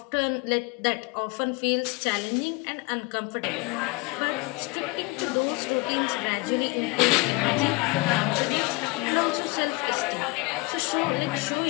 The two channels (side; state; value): right; quieter; 24.8 dB